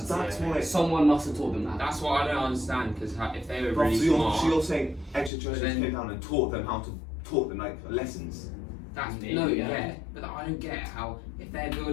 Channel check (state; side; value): drops out; right; at 5.3 s